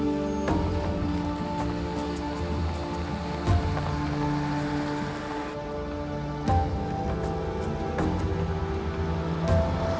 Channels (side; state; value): both; identical; correlation 1.00